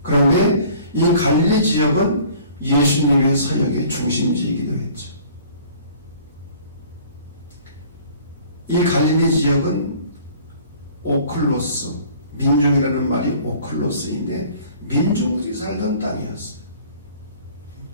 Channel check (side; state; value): both; inverted; correlation -0.51